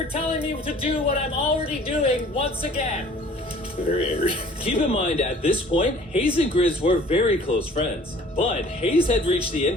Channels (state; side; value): normal; both; correlation 0.51